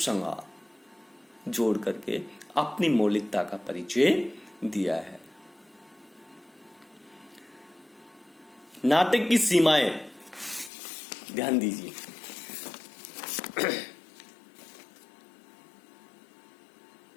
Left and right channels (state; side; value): drops out; right; at 10.7 s